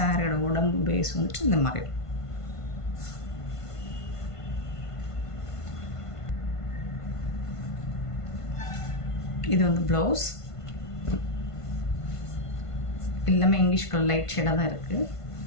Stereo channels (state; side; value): late; right; 1.5 ms